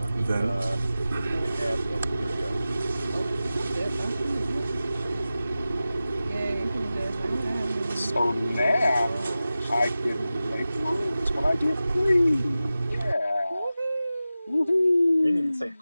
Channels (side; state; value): both; inverted; correlation -0.95